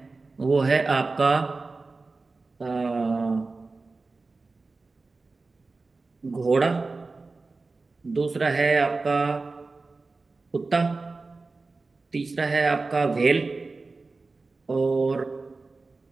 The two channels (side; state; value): left; quieter; 3.7 dB